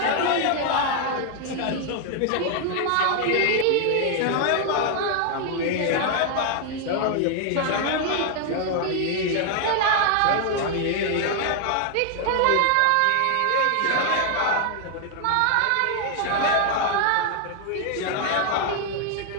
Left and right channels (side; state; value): both; different; correlation 0.00